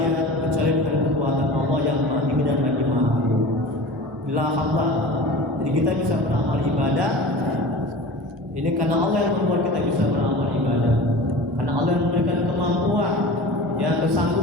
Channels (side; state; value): both; normal; correlation 0.36